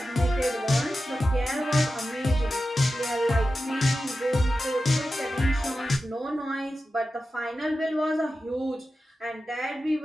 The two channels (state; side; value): normal; both; correlation 0.92